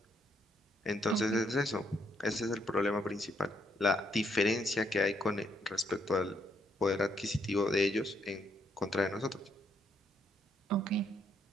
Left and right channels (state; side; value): normal; both; correlation 0.73